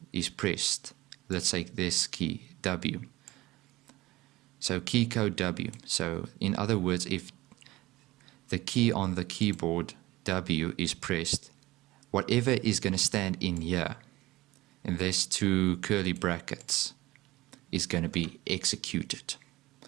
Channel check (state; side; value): quieter; left; 18.9 dB